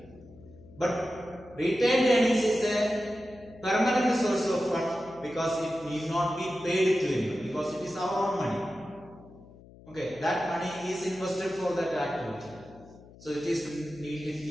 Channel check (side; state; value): left; noise; hum, 21 dB below the sound